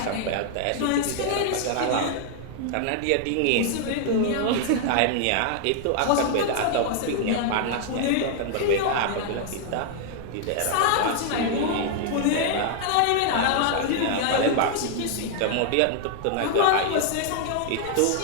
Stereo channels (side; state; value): both; different; correlation 0.00